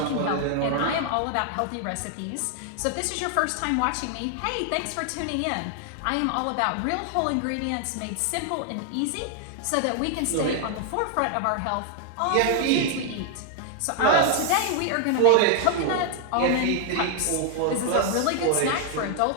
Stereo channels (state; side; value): different; both; correlation 0.00